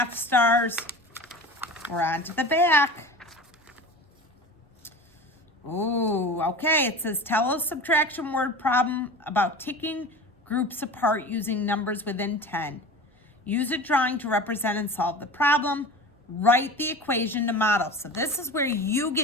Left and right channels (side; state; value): both; normal; correlation 0.34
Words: stars. We're on to the back. Ooh, okay. It says, tell a subtraction word problem about taking groups apart using numbers within 10. Use a drawing to represent and solve the problem. Write the equation to model. So this is where you